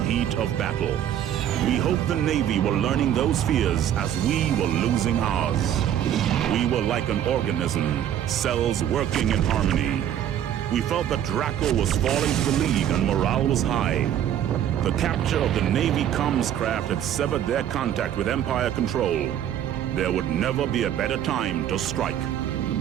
heat of battle. We hope the Navy were learning those fears as we were losing ours. We were like an organism, cells working in harmony. We felt that Draco was falling to the league and morale was high. The capture of the Navy comms craft had severed their contact with Empire control. There would never be a better time to strike.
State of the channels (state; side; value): quieter; left; 10.5 dB